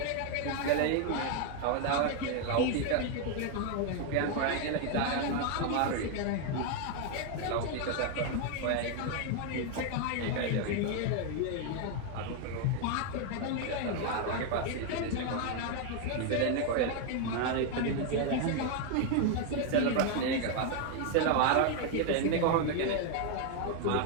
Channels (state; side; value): different; both; correlation 0.01